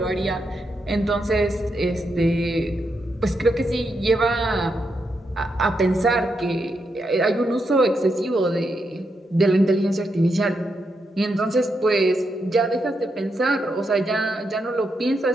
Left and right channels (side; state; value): both; normal; correlation 0.83